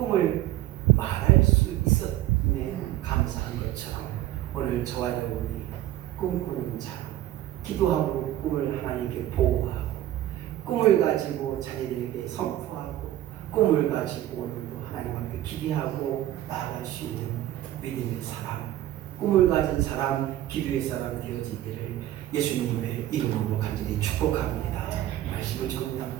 말할 수 있었음에 감사한 것처럼 오늘 저와 여러분이 꿈꾸는 자, 기도하고 꿈을 하나님께 보호하고 꿈을 가지고 자녀들에게 선포하고 꿈을 가지고 오늘도 하나님 앞에 기대하고 나아갈 수 있는 믿음의 사람, 꿈을 가진 사람, 기도의 사람 되어지기를 예수님의 이름으로 간절히 축복합니다. 말씀을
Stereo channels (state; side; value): quieter; left; 13.8 dB